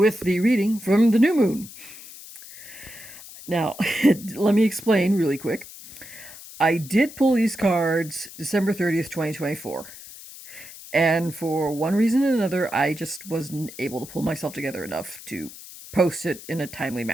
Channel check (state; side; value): noise; left; hiss, 16 dB below the sound